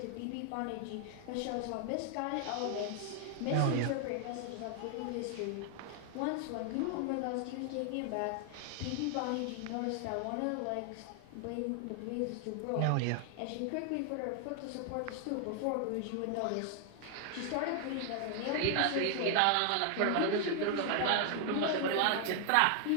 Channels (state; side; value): different; both; correlation 0.00